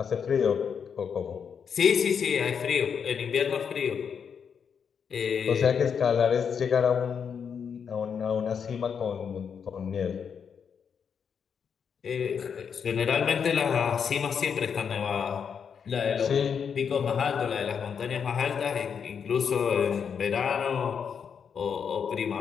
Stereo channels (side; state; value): right; quieter; 7.0 dB